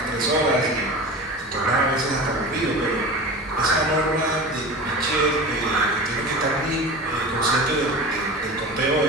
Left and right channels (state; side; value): normal; both; correlation 0.33